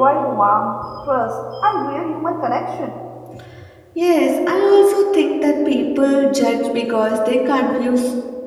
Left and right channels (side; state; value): both; identical; correlation 1.00